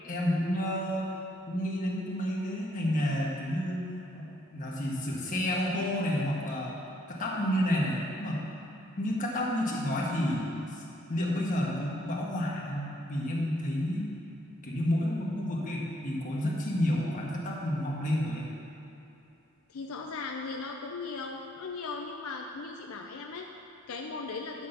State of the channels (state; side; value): normal; both; correlation 0.71